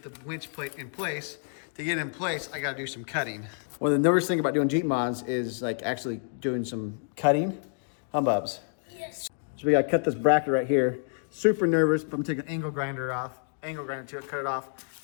the winch plate in place. To get it in place, I gotta do some cutting. Well, the nervous thing about doing Jeep mods is like actually doing some cutting. Humbubs. Yes. So we gotta cut this bracket right here. Super nervous, but I'm gonna take an angle grinder to it, cut it off.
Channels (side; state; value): right; silent; 59 dB below the other